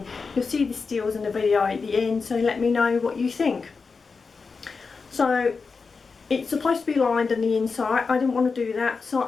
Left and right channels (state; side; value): quieter; right; 4.8 dB